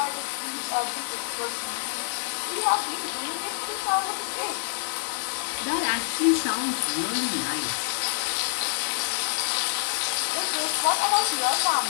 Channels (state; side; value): silent; right; 60 dB below the other